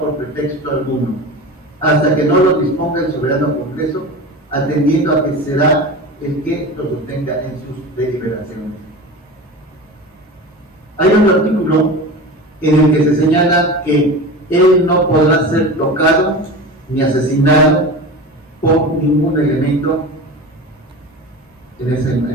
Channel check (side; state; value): both; normal; correlation 0.31